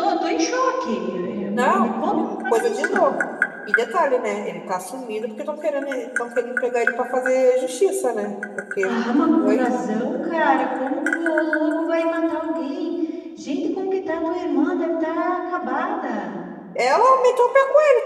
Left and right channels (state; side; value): identical; both; correlation 1.00